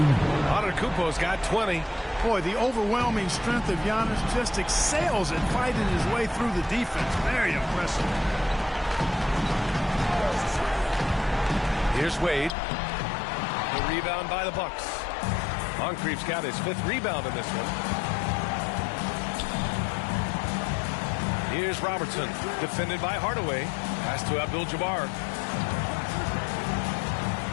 Antetokounmpo's got 20. Boy, the overwhelming strength of Giannis just excels at fighting his way through the defense. Very impressive. Here's Wade. The rebound by the Bucks. Moncrief's got his 5th rebound in this one. Here's Robertson, defended by Hardaway. Pass to Abdul-Jabbar.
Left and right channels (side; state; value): right; drops out; at 12.5 s